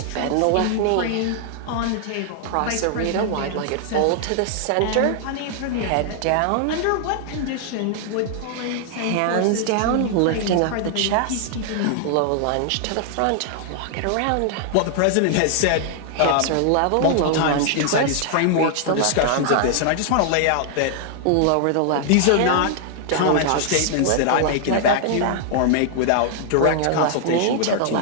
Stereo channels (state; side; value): different; both; correlation 0.00